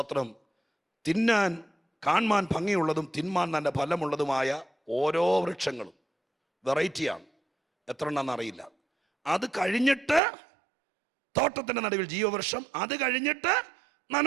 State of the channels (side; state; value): left; drops out; at 10.2 s